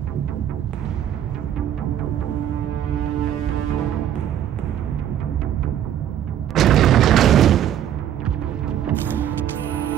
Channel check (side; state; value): left; quieter; 10.5 dB